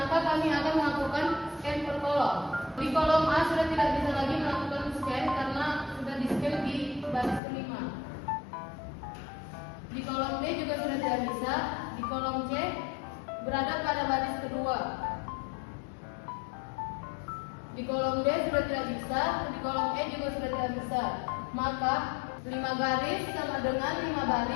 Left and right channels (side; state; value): right; drops out; at 7.4 s